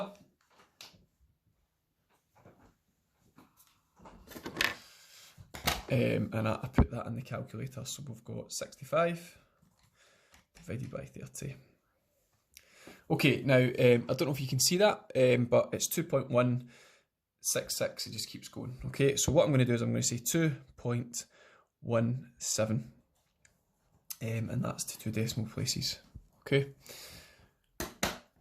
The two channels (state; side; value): identical; both; correlation 1.00